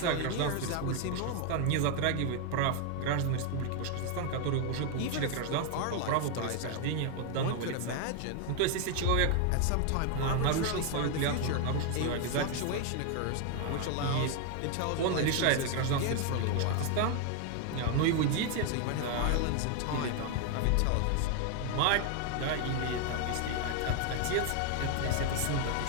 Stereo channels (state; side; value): different; both; correlation 0.00